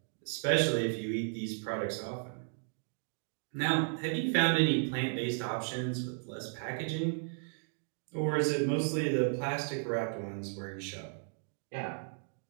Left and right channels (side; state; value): left; silent; 55 dB below the other